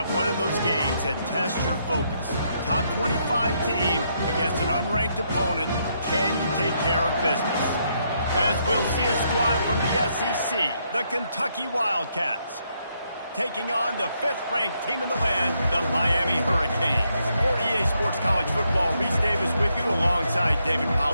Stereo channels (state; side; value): inverted; both; correlation -0.76